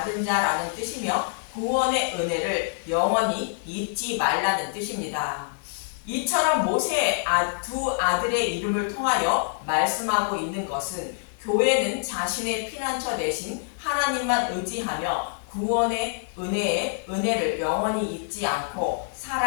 자라는 뜻이며 구원의 은혜를 영원히 잊지 말라는 뜻입니다. 이처럼 모세의 두 아들의 이름을 통하여 말씀하고 있는 것은 교회는 자신의 피난처 대신 하나님만 의지하며 구원의 은혜를 영원히 잊지 않고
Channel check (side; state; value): right; silent; digital silence